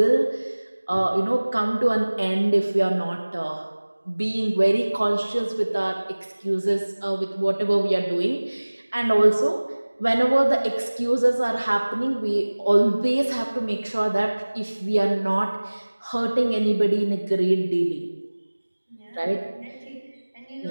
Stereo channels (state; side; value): inverted; both; correlation -1.00